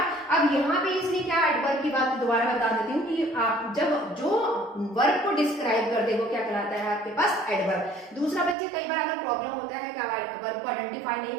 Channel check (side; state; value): left; drops out; at 8.6 s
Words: अब यहाँ पे इसने क्या एडवर्ब की बात दोबारा बता देती हूँ कि आप जब जो वर्ब को डिस्क्राइब कर दे वो क्या कहलाता है आपके पास? एडवर्ब। दूसरा बच्चे कई बार अगर प्रॉब्लम होता है कि वर्ब को आइडेंटिफाई नहीं